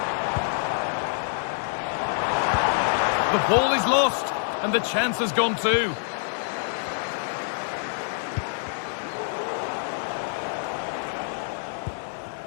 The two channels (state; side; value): silent; right; digital silence